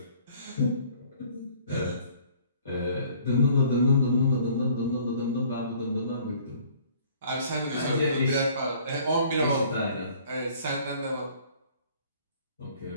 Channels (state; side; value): inverted; both; correlation -0.56